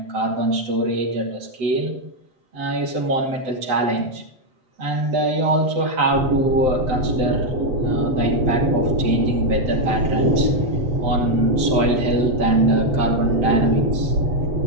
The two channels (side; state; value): left; late; 7.8 ms